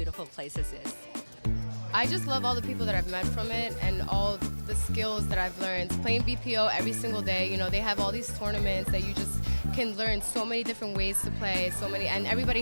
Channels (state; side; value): inverted; both; correlation -1.00